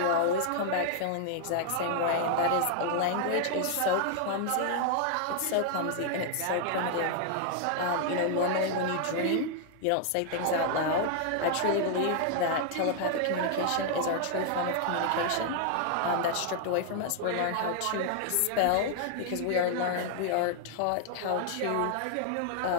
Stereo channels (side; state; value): both; different; correlation 0.00